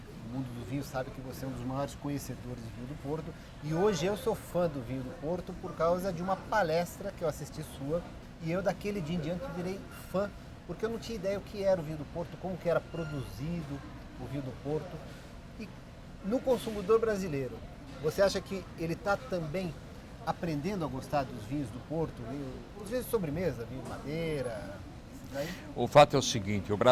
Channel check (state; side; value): identical; both; correlation 1.00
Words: mundo do vinho sabe que você é um dos maiores conhecedores de vinho do Porto. E hoje eu sou fã do vinho do Porto por causa de uma palestra que eu assisti sua. E eu daquele dia em diante virei fã, porque eu não tinha ideia o que era o vinho do Porto, como que era produzido o vinho do Porto. E no consumidor brasileiro, você acha que ele está também aprendendo a gostar dos vinhos do Porto? Os vinhos de sobremesa, vinho de madeira... O fato é o seguinte, o